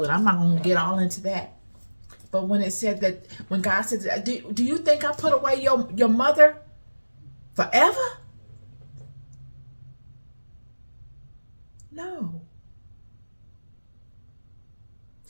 it. I'm not going to get all into that. But when it said that, when God said, do you think I put away your mother forever? No.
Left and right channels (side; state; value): both; inverted; correlation -1.00